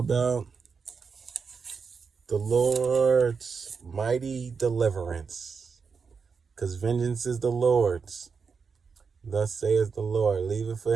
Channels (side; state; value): left; quieter; 5.5 dB